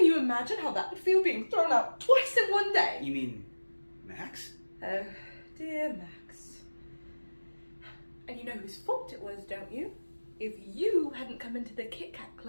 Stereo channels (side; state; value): both; inverted; correlation -1.00